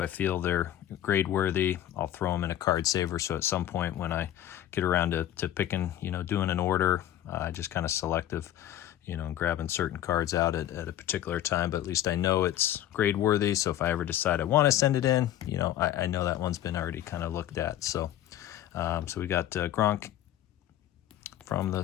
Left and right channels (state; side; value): quieter; right; 12.2 dB